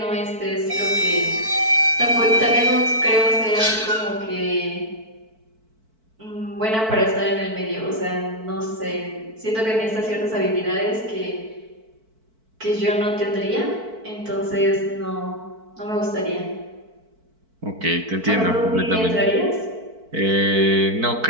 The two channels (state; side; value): late; left; 4.5 ms